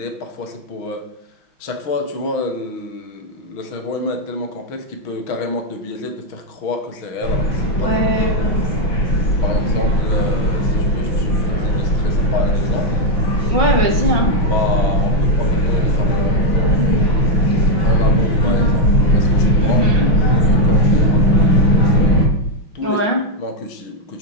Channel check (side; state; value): right; late; 5.6 ms